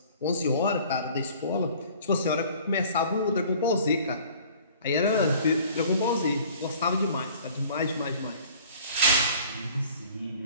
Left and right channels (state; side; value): inverted; both; correlation -0.50